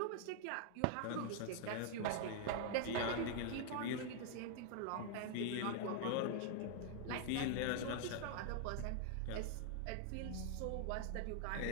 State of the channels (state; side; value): different; both; correlation 0.00